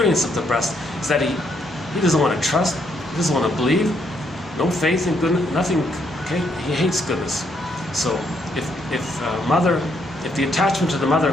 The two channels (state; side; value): normal; both; correlation 0.73